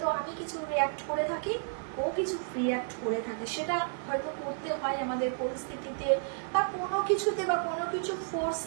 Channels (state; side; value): silent; left; digital silence